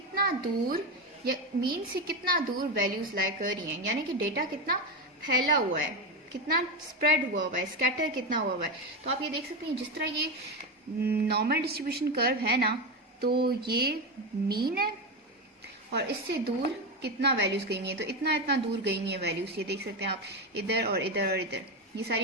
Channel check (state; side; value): normal; both; correlation 0.14